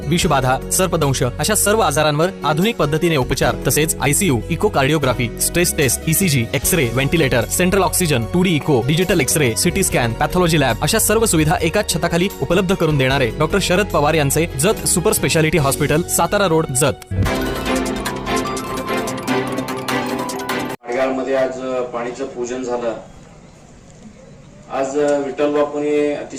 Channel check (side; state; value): both; identical; correlation 1.00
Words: विषबाधा, सर्पदंश अशा सर्व आजारांवर आधुनिक पद्धतीने उपचार तसेच ICU, echocardiography, stress test, ECG, X-ray, ventilator, central oxygen, 2D echo, digital X-ray, CT scan, pathology lab अशा सर्व सुविधा एकाच छताखाली उपलब्ध करून देणारे डॉक्टर शरद पवार यांचे Jat super speciality hospital, Satara road, Jat. मध्ये आज पाणीचं पूजन झालं. आज विठ्ठल बापूंनी